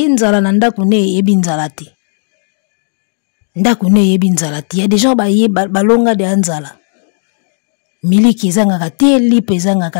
nzala na ndaku ne yebi nzala te. Ndaku ne yebi nzala te. Ya des gens balonga de nzala. Miliki ezanga te, lipe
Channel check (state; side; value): silent; right; digital silence